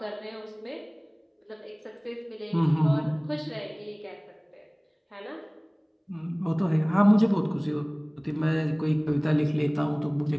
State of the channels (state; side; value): identical; both; correlation 1.00